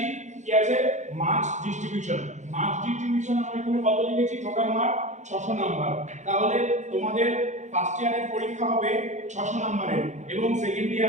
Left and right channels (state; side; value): late; left; 0.34 ms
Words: কি আছে মার্কস ডিস্ট্রিবিউশন। মার্কস ডিস্ট্রিবিউশন আমরা এখানে কত লিখেছি, টোটাল মার্ক 600 নাম্বার। তাহলে তোমাদের ফার্স্ট ইয়ারের পরীক্ষা হবে 600 নাম্বারের এবং সেকেন্ড